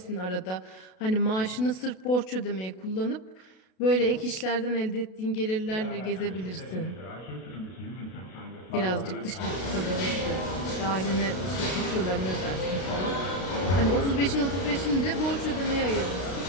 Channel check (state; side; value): late; right; 32 ms